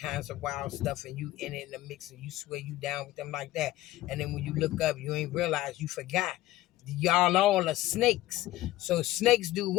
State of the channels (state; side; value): quieter; right; 16.0 dB